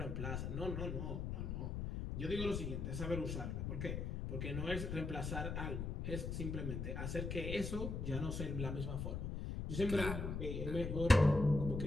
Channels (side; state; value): left; noise; rumble, 3 dB below the sound